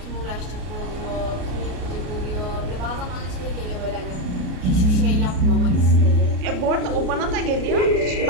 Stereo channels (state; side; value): late; left; 33 ms